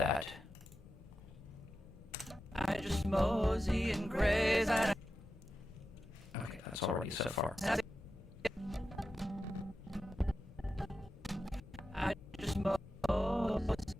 I just mosey and graze. Okay, that's already so far. I just mosey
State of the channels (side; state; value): both; normal; correlation 0.91